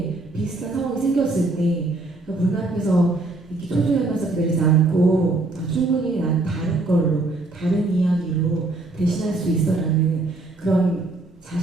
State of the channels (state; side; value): quieter; left; 3.1 dB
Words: 비슷한 상황이 생겼을 때 문 앞에서 이렇게 초조해하면서 기다리지 않고 충분히 난 다른 걸로 다른 이야기로 대신할 수 있어라는 그런